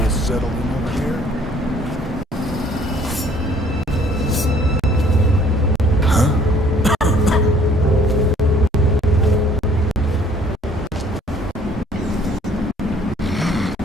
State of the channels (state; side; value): normal; both; correlation 0.58